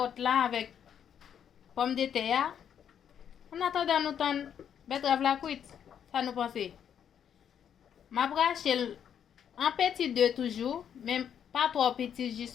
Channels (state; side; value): quieter; right; 8.7 dB